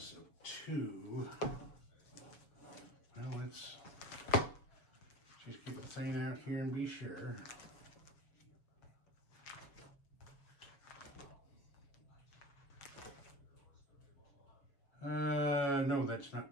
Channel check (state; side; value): late; right; 7.1 ms